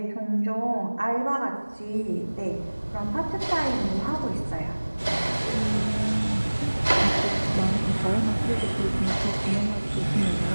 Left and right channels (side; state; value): both; inverted; correlation -1.00